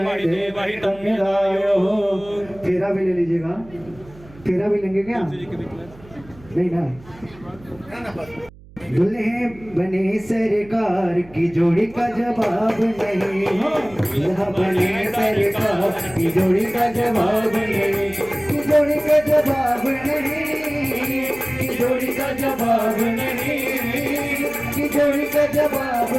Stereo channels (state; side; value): noise; right; hum, 22 dB below the sound